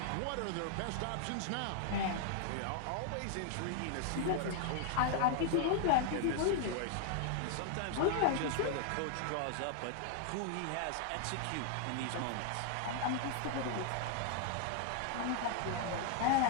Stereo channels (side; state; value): both; different; correlation -0.01